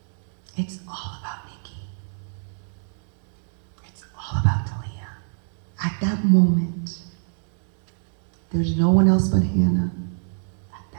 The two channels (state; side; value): silent; left; digital silence